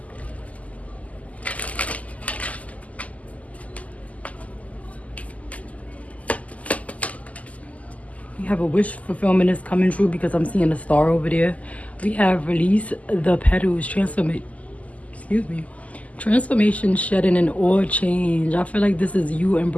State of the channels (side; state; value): right; late; 0.072 ms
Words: We have a wish fulfillment is coming true because I'm seeing a star over there. We have release the petals, transformation, shedding, and all change. I feel like this is you